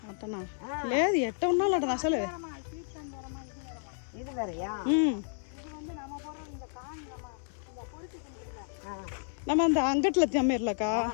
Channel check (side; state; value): right; silent; 57 dB below the other